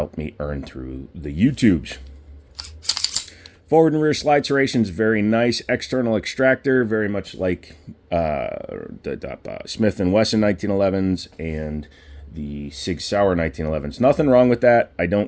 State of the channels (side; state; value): both; identical; correlation 1.00